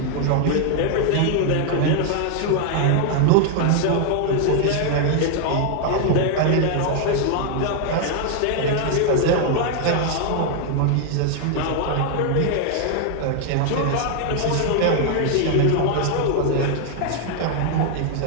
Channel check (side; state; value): both; different; correlation 0.00